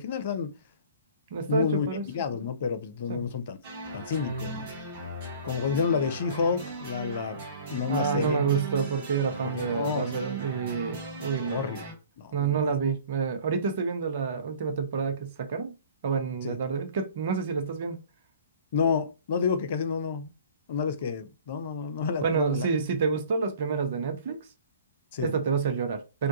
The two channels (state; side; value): inverted; both; correlation -0.46